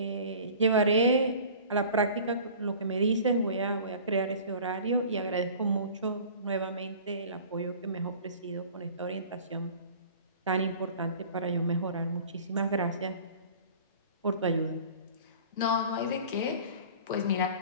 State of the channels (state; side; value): inverted; both; correlation -0.43